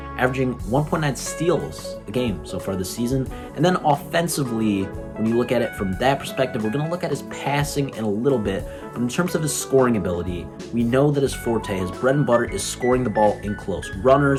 averaging 1.9 steals a game so far this season. And then offensively, when you look at it from that perspective, we're going to look at his passing in a little bit, but in terms of his scoring ability, we know that his forte, his bread and butter, is scoring the ball in close.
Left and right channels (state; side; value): identical; both; correlation 1.00